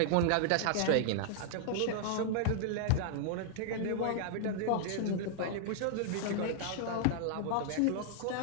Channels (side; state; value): both; different; correlation -0.01